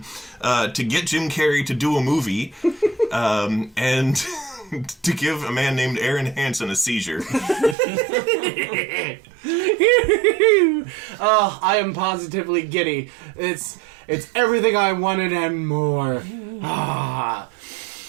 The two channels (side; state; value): left; drops out; at 7.8 s